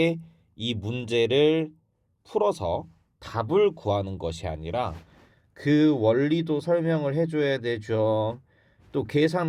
이 문제를 풀어서 답을 구하는 것이 아니라 그 원리도 설명을 해줘야 되죠. 또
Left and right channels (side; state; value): both; identical; correlation 1.00